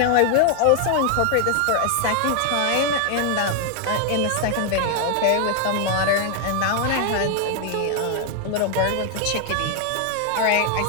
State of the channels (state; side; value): different; both; correlation 0.00